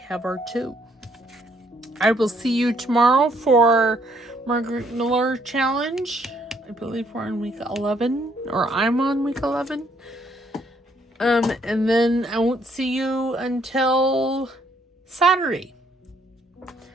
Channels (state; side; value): normal; both; correlation 0.68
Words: have our 2. I will see you tomorrow for Margaret Miller Challenge. I believe we're on week 11. Or I'm on week 11. And then I won't see you until Saturday.